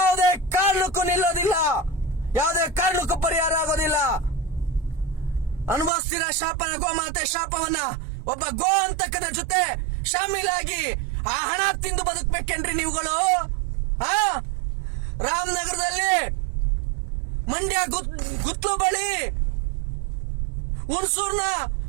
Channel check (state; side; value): drops out; left; at 5.9 s